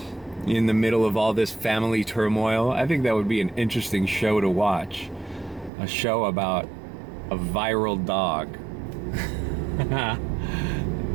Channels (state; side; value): drops out; left; at 5.7 s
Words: in the middle of all this family turmoil. I think that would be an interesting show to watch. A show about a viral dog.